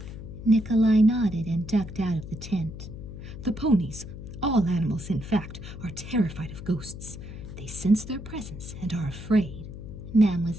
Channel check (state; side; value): noise; left; hum, 11 dB below the sound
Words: Nikolai nodded and ducked out of the tent. The ponies, all animals in fact, are terrified of ghosts. They sense their presence and are afraid,